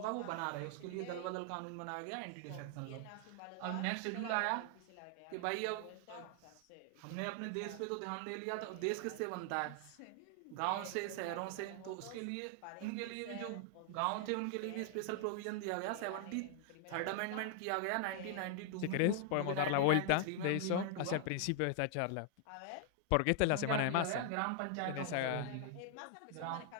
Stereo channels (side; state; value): both; different; correlation 0.00